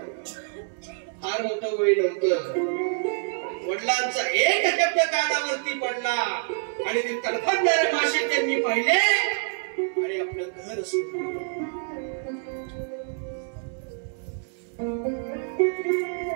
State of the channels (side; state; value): left; silent; 61 dB below the other